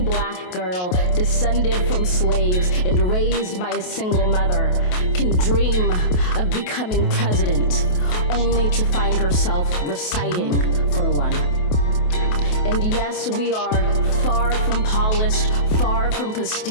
girl descended from slaves and raised by a single mother can dream of becoming president, only to find herself reciting for one. And yes, we are far from polished, far from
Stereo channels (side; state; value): right; late; 28 ms